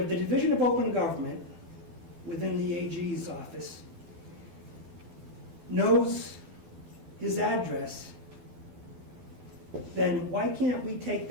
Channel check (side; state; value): left; late; 12 ms